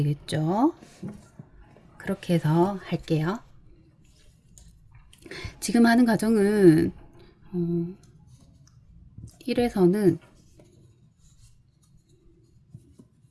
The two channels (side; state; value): both; identical; correlation 1.00